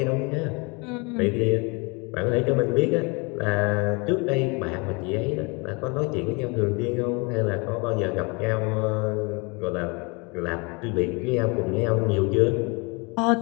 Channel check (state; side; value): quieter; right; 29.6 dB